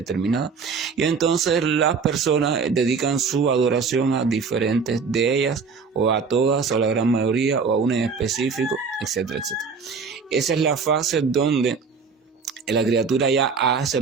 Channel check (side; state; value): left; quieter; 5.3 dB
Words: y entonces las personas dedican su adoración a diferentes de ellas o a todas o a la gran mayoría o a una en específico, etcétera, etcétera. Esa es la fase donde la criatura ya ha